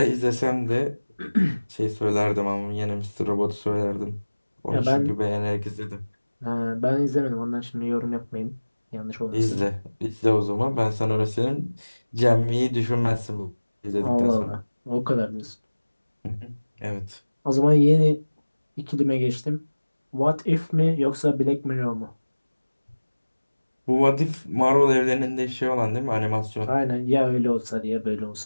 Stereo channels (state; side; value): inverted; both; correlation -1.00